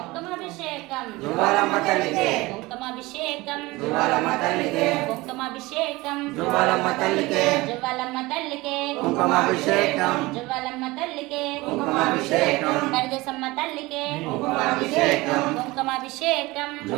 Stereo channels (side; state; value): left; quieter; 21.3 dB